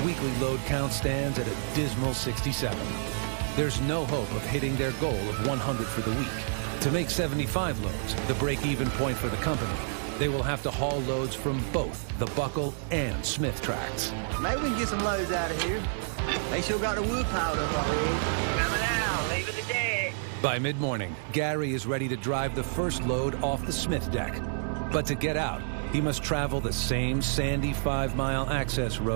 weekly load count stands at a dismal 67. There's no hope of hitting their goal of 100 for the week. To make 75 loads, the break-even point for the company, they will have to haul loads from both the Buckle and Smith Tracts. Maybe we can get some loads out of here. They still got the wood piled up already. Coming out, leaving the deck. By mid-morning, Gary is ready to drive the first load off the Smith deck. But to get out, he must travel the same sandy 5-mile access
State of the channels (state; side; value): silent; left; digital silence